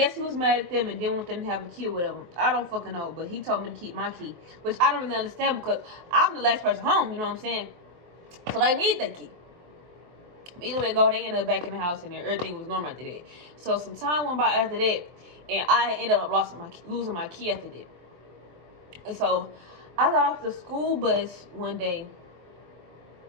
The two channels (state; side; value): late; left; 23 ms